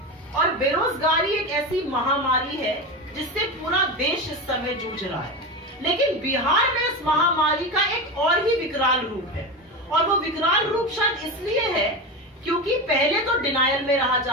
और बेरोजगारी एक ऐसी महामारी है जिससे पूरा देश इस समय जूझ रहा है, लेकिन बिहार में इस महामारी का एक और ही विकराल रूप है। और वो विकराल रूप शायद इसलिए है क्योंकि पहले तो डिनायल में रहा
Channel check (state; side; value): normal; both; correlation 0.21